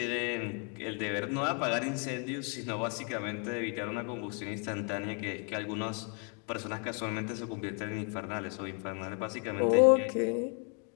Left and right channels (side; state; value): right; quieter; 33.5 dB